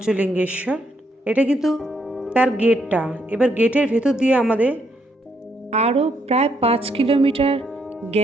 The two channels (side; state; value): both; normal; correlation 0.74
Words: এটা কিন্তু তার গেটটা। এবার গেটের ভেতর দিয়ে আমাদের আরও প্রায় 5 কিলোমিটার